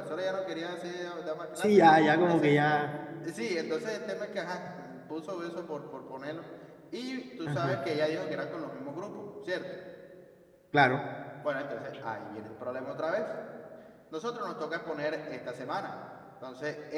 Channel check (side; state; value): both; identical; correlation 1.00